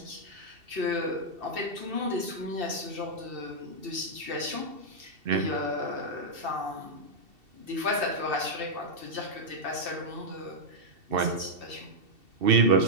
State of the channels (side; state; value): left; late; 2.7 ms